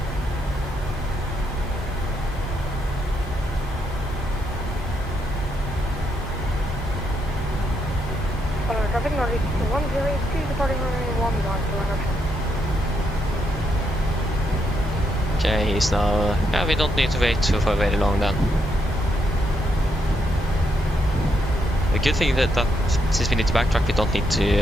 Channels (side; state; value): both; normal; correlation 0.78